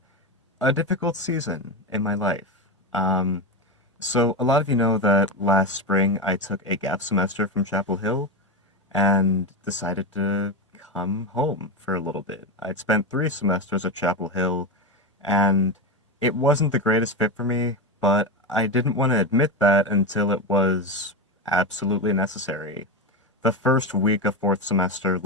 a difficult season in my life. Um, so a lot of you know that last spring I took a gap semester from Chapel Hill and decided to come home for a little bit. I'd spent 3 semesters at Chapel Hill, and it wasn't the greatest fit for me, but I didn't want to admit that until it was absolutely necessary. The first week of 4th semester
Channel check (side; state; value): both; normal; correlation 0.14